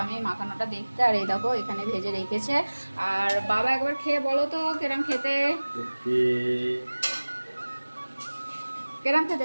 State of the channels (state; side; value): inverted; both; correlation -1.00